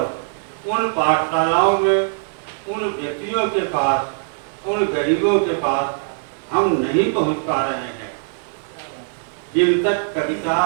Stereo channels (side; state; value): left; silent; digital silence